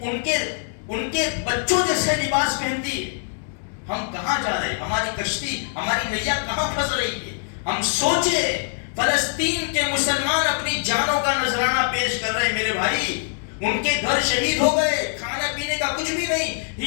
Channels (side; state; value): right; silent; 62 dB below the other